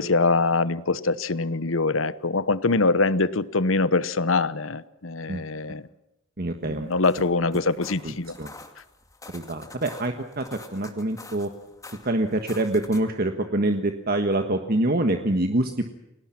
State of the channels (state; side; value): normal; both; correlation 0.02